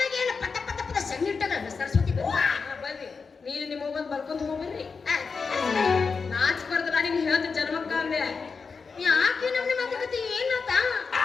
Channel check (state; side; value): quieter; right; 5.0 dB